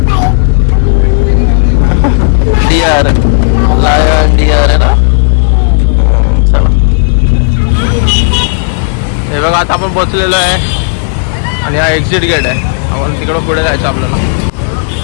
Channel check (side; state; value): right; silent; digital silence